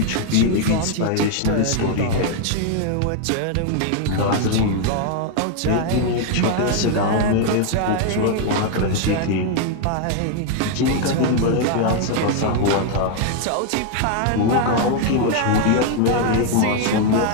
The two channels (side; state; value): both; different; correlation 0.00